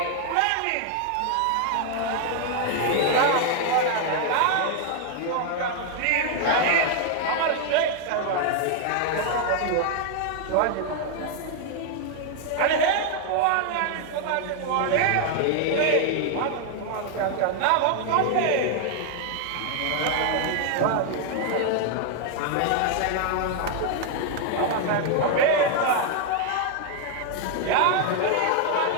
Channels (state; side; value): different; both; correlation 0.00